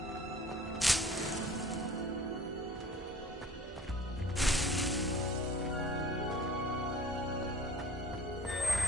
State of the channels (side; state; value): both; normal; correlation 0.47